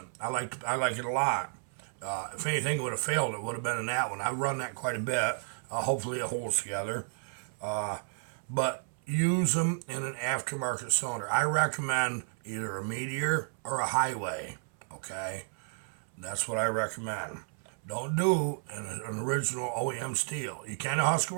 I like it a lot. If anything would have failed, it would have been in that one. I run that quite a bit. Hopefully it holds together. But use them in an aftermarket cylinder. I recommend either a Meteor or a Highway. Okay? That's what I recommend. Don't do an original OEM steel. You can a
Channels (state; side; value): silent; left; 56 dB below the other